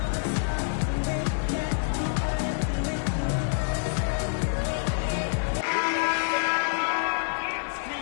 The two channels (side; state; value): right; silent; digital silence